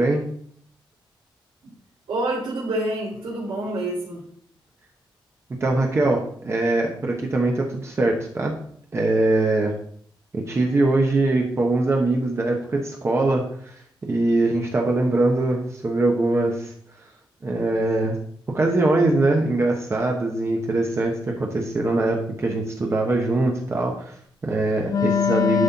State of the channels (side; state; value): both; normal; correlation 0.82